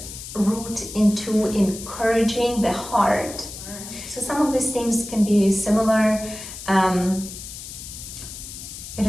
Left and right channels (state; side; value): noise; left; hiss, 11 dB below the sound